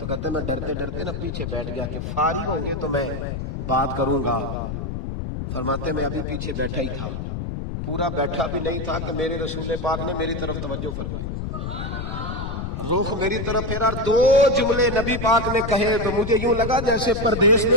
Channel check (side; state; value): left; noise; rumble, 5 dB below the sound